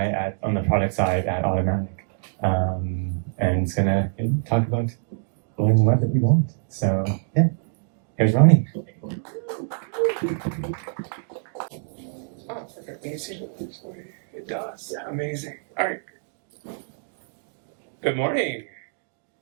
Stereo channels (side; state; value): left; silent; digital silence